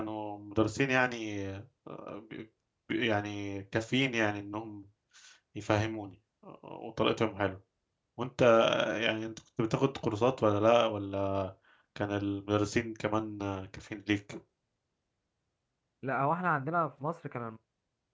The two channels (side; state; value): both; identical; correlation 1.00